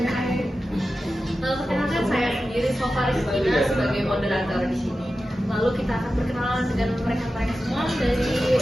Perkenalkan saya sendiri Sofa Rizkina sebagai moderator di sini. Lalu kita akan berkenalan dengan mereka-mereka semua dari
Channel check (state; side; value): normal; both; correlation 0.93